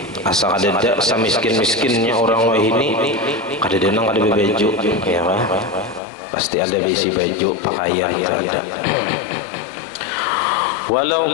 Asal ada miskin-miskinnya orang wah ini kada denang kada baju ya kan. Pasti ada besi baju pakaian ada. Walau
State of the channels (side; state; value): right; drops out; at 6.0 s